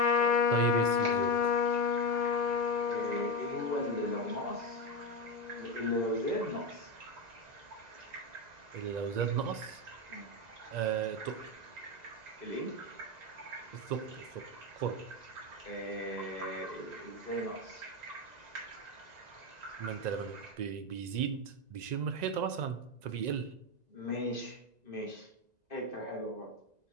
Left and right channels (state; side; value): late; left; 2.0 ms